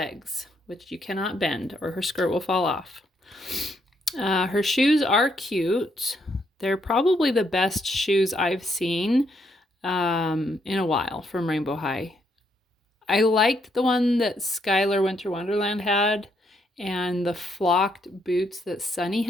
which you cannot bend or her skirt will fall off. Her shoes are cute. They're probably the best shoes I've seen in a while from Rainbow High. I liked the one that Skylar Winter Wonderland had, and the flocked boots that Sunny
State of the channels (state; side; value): normal; both; correlation 0.75